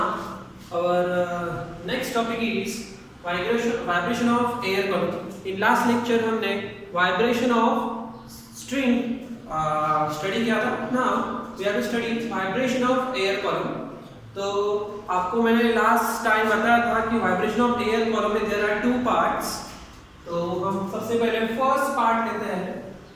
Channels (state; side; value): identical; both; correlation 1.00